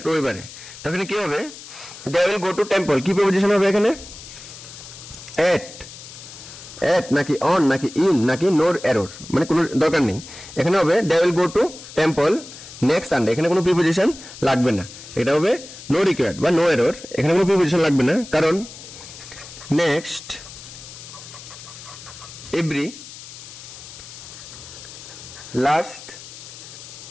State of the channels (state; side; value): noise; left; hiss, 15 dB below the sound